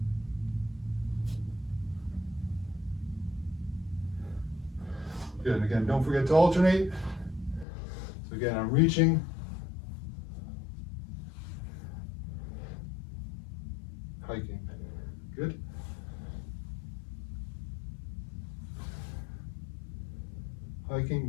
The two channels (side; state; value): right; drops out; at 7.7 s